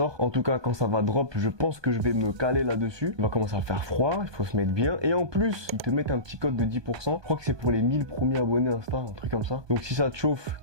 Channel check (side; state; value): left; late; 1.2 ms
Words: En tout cas, quand ça va drop, je pense que je vais me caler là-dessus. Il va commencer à faire froid, il faut se mettre bien. Et en plus, ils te mettent un petit code de 10%. Je crois que c'est pour les 1000 premiers abonnés Insta, un truc comme ça. Donc si ça te chauffe,